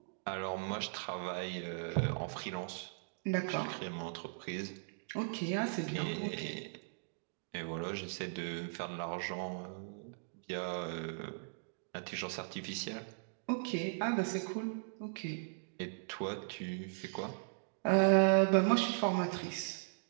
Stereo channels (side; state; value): left; silent; digital silence